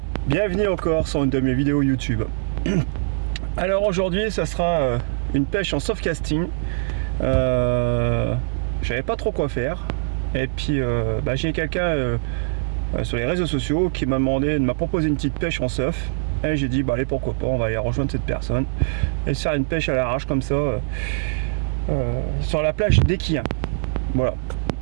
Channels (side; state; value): left; silent; digital silence